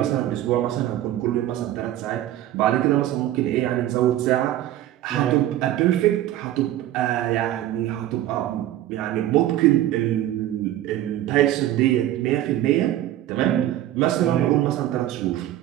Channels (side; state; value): left; quieter; 13.2 dB